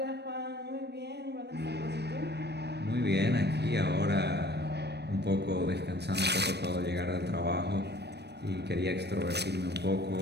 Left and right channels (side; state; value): left; late; 0.49 ms